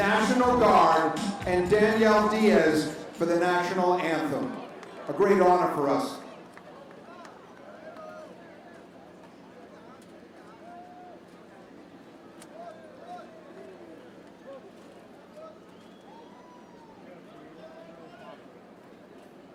Guard and Danielle Diaz for for the national anthem. A great honor for us.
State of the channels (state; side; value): identical; both; correlation 1.00